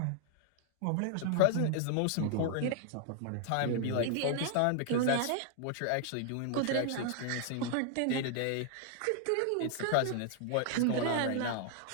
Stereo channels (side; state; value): both; different; correlation 0.00